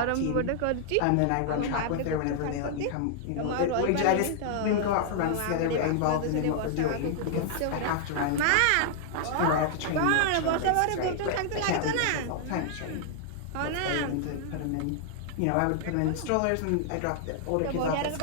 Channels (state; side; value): different; both; correlation -0.01